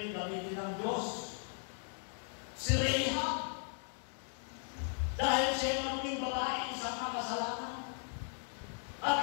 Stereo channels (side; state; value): right; silent; 53 dB below the other